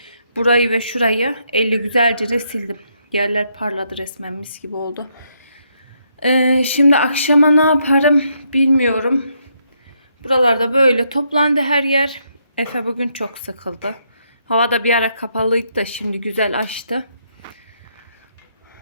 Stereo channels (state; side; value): inverted; both; correlation -0.76